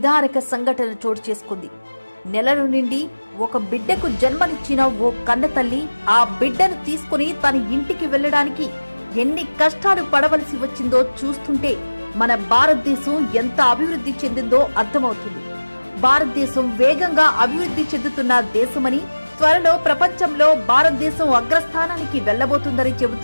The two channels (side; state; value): both; inverted; correlation -1.00